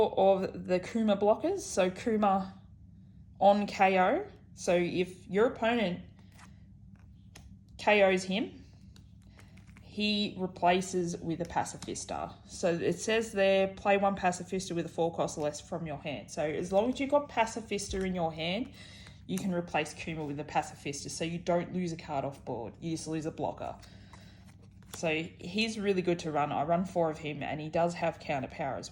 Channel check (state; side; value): identical; both; correlation 1.00